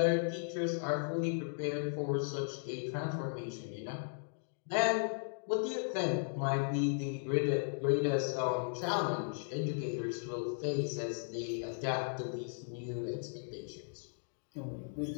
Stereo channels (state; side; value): silent; right; digital silence